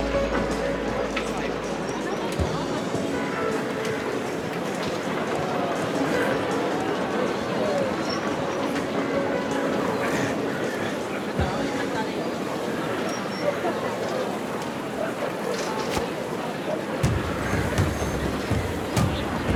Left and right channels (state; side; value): identical; both; correlation 1.00